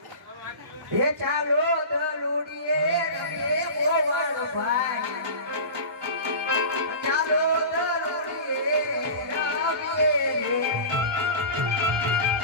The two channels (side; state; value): left; late; 1.4 ms